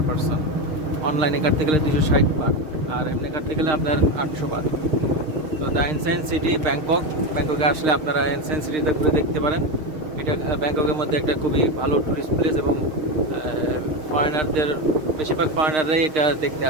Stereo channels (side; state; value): left; late; 6.5 ms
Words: পারসন। অনলাইনে কাটতে গেলে 260 বাদ, আর এমনি কাটতে গেলে আপনার 800 বাদ। তো দ্য এনসিয়েন্ট সিটি ব্যাংককে আসলে আপনারা এনসিয়েন্ট সিটিতে ঘুরে দেখতে পারেন। এটা ব্যাংককের মধ্যে একটা খুবই ভালো টুরিস্ট প্লেস, এবং ফরেনারদের, বেশিরভাগ ফরেনাররাই এটা দেখতে